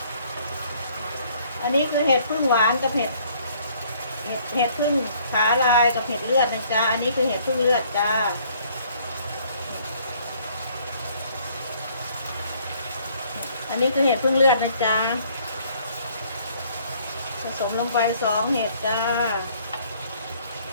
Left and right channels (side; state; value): both; inverted; correlation -0.61